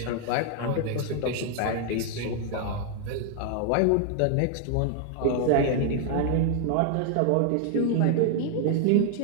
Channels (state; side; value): different; both; correlation 0.00